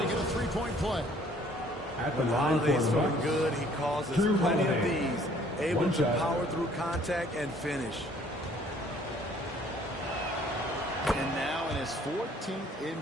it a three-point play. When Holiday's feeling good, he causes plenty of these, able to power through contact and finish. And now in his 14th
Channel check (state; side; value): normal; both; correlation 0.58